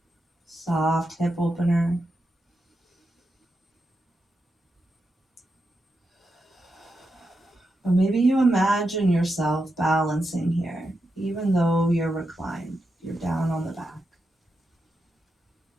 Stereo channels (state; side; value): normal; both; correlation 0.87